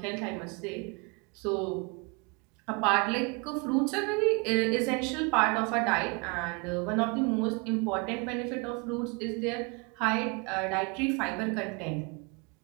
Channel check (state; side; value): quieter; left; 31.3 dB